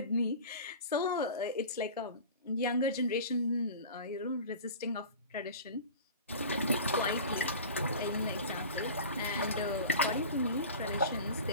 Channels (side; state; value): both; inverted; correlation -0.36